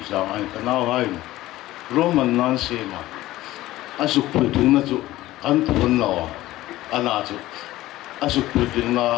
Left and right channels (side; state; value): right; quieter; 16.3 dB